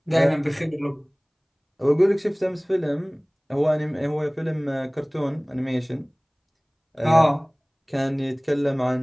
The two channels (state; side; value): identical; both; correlation 1.00